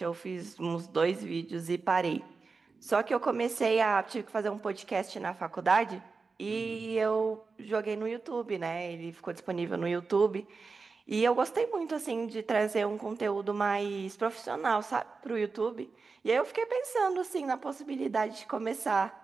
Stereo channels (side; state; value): left; quieter; 4.4 dB